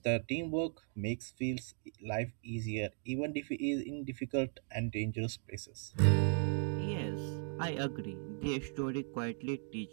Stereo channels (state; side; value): silent; left; 53 dB below the other